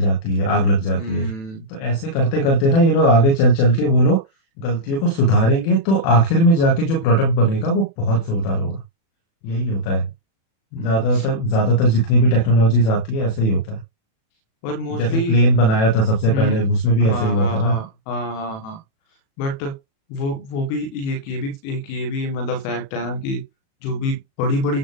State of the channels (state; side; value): late; right; 36 ms